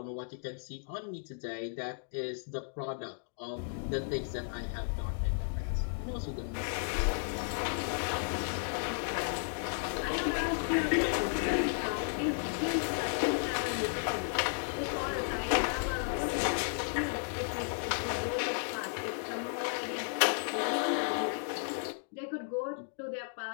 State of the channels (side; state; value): right; silent; digital silence